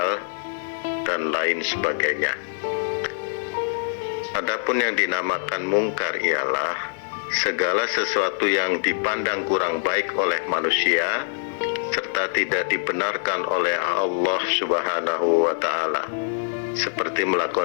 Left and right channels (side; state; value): right; silent; digital silence